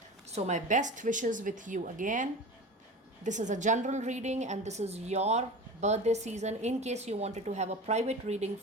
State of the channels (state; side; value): normal; both; correlation 0.33